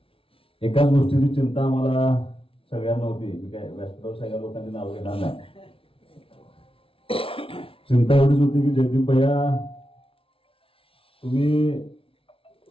एकाच गोष्टीची चिंता आम्हाला सगळ्यांना होती. मी काय व्यासपीठावर सगळ्या लोकांची नाव घेणार नाही. चिंता एवढीच होती की जयदीप भैया तुम्ही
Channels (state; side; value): late; right; 0.26 ms